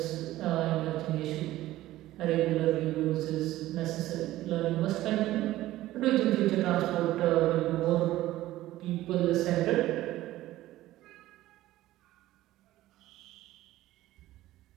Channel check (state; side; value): quieter; left; 15.6 dB